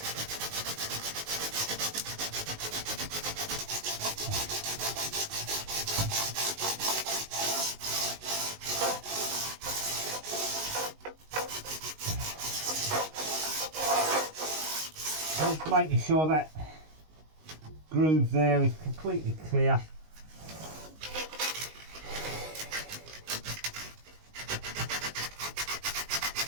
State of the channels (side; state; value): left; late; 19 ms